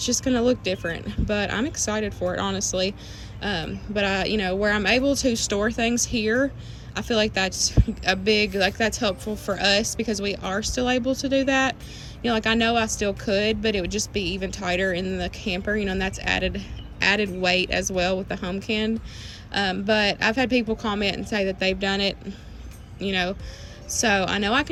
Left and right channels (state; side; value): identical; both; correlation 1.00